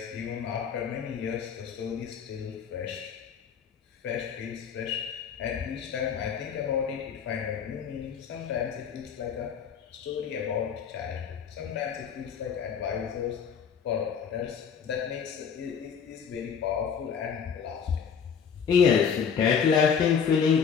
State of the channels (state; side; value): quieter; right; 7.0 dB